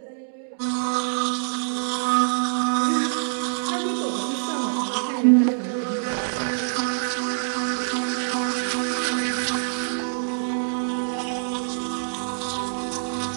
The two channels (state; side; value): silent; left; digital silence